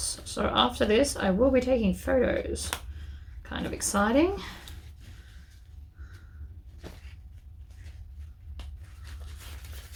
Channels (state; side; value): identical; both; correlation 1.00